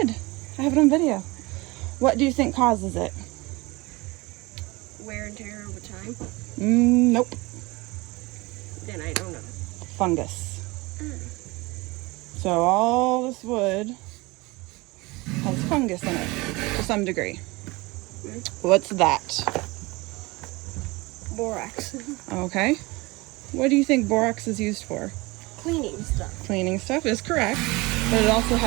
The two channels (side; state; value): left; quieter; 23.6 dB